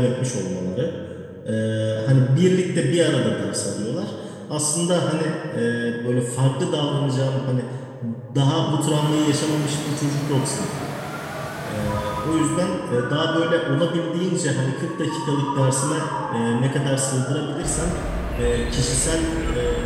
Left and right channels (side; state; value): both; identical; correlation 1.00